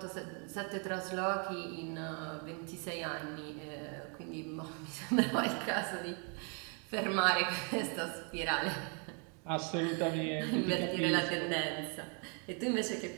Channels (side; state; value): left; quieter; 37.7 dB